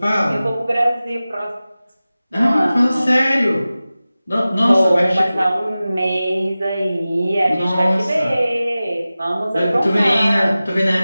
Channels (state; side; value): inverted; both; correlation -0.96